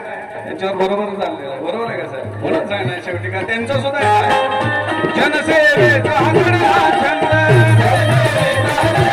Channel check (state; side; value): identical; both; correlation 1.00